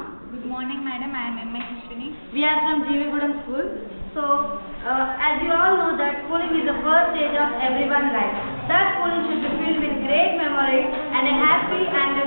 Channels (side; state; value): both; inverted; correlation -1.00